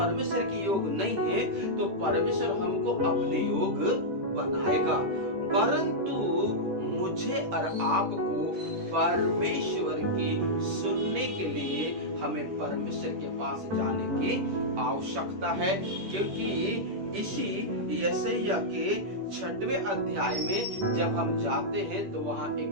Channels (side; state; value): left; late; 10 ms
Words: के योग नहीं है तो परमेश्वर हमको अपने योग बनाएगा। परंतु मुझे और आपको परमेश्वर की सुनने के लिए हमें परमेश्वर के पास जाने की आवश्यकता है। क्योंकि इसी यशायाह के 6वें अध्याय में जब हम जाते हैं तो वहाँ